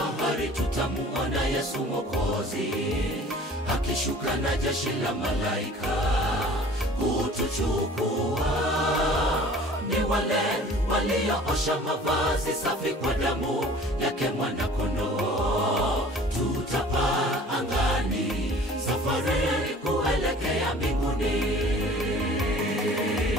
tutamuona Yesu Mwokozi akishuka na jeshi la malaika kutuchukua. Ni wale walioosha mavazi safi kwa damu yake mwana-kondoo. Tutapaa angani, safari kuelekea mbinguni.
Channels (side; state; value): both; normal; correlation 0.47